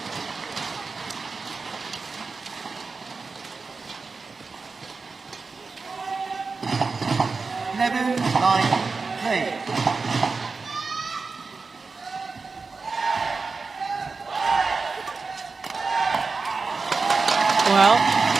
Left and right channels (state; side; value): quieter; left; 4.4 dB